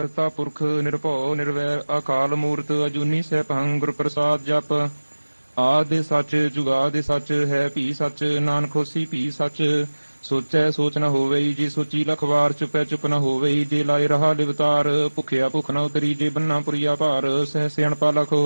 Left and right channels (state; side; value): inverted; both; correlation -1.00